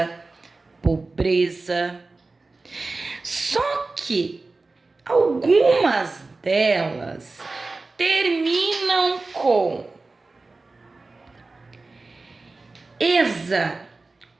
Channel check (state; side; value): quieter; left; 3.5 dB